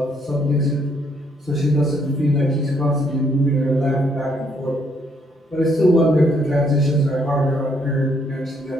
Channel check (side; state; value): both; normal; correlation 0.70